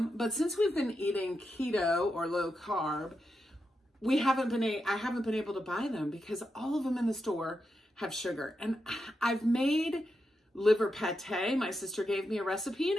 But since we've been eating keto or low carb, I haven't been able to buy them because all of them in the store have sugar. And I've made liver pate. My sister gave me a recipe, and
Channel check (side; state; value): both; normal; correlation 0.86